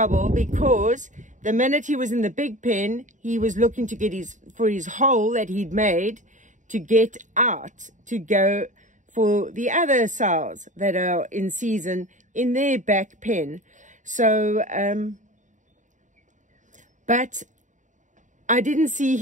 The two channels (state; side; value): late; left; 0.36 ms